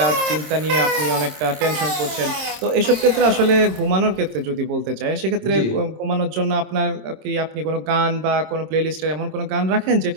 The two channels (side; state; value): left; late; 26 ms